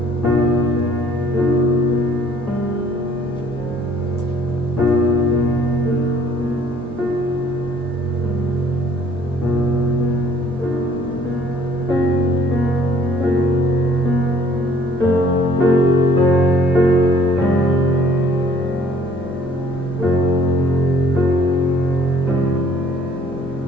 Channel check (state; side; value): normal; both; correlation 0.57